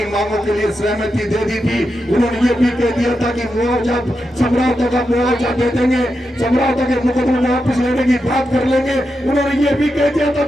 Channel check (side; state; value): both; normal; correlation 0.87